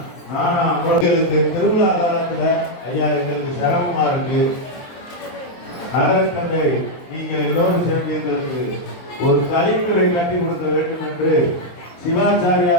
எங்களுக்கு திருவிழா காலத்தில் ஐயா எங்களுக்கு சிரமமா இருக்கு. நகர தந்தை நீங்கள் எல்லோரும் சேர்ந்து எங்களுக்கு ஒரு கலைஞரை கட்டி கொடுக்க வேண்டும் என்று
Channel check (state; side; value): late; right; 23 ms